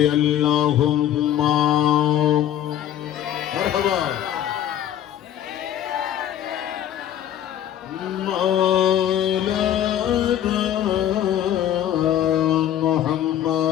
আল্লাহুম্মা মারহাবা মাওলানা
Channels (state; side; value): quieter; right; 10.9 dB